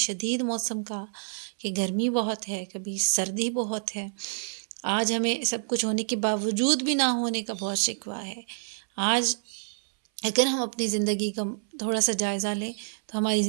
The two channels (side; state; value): left; silent; 59 dB below the other